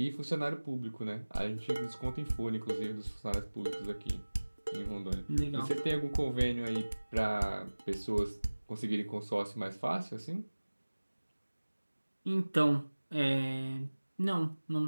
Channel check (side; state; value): both; inverted; correlation -1.00